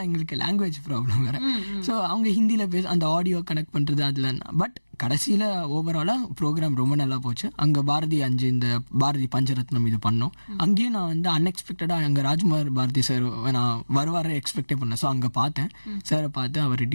எங்களுக்கு லாங்குவேஜ் ப்ராப்ளம் வேறு. ஸோ அவங்க ஹிந்தியில் அந்த ஆடியோ கனெக்ட் பண்ணுறது அதில். பட் கடைசியில் ஓவராலாக ப்ரோக்ராம் ரொம்ப நல்லா போச்சு. அங்கே பாரதி 5 இந்த பாரதி பஞ்சரத்னம் இது பண்ணோம். அங்கேயும் நான் வந்து அன்எக்ஸ்பெக்டடாக அங்கே ராஜ்குமார் பாரதி சார் நான் வருவார எக்ஸ்பெக்டே பண்ணேன். ஸோ அங்கே பார்த்தேன், சாரை பார்த்து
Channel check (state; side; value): inverted; both; correlation -1.00